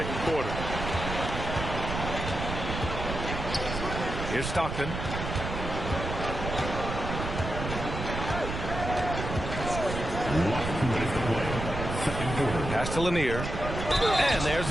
quarter. Here's Stockton. Pass to Lanier. And there's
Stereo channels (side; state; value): right; noise; rumble, 5 dB below the sound